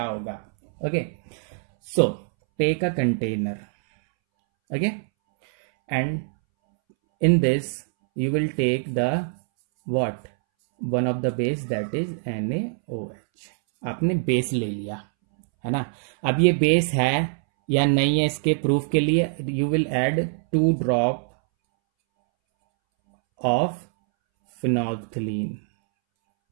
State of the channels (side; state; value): left; silent; 63 dB below the other